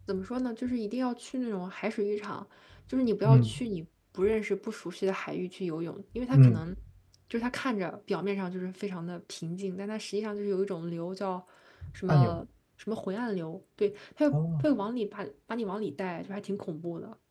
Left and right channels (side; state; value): both; identical; correlation 1.00